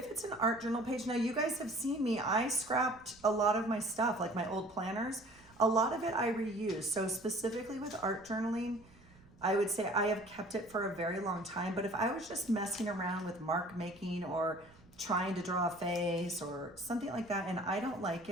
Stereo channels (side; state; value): right; noise; rumble, 26 dB below the sound